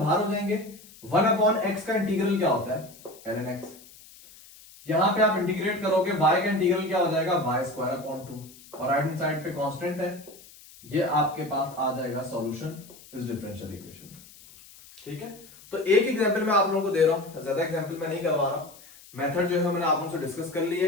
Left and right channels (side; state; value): left; noise; hiss, 22 dB below the sound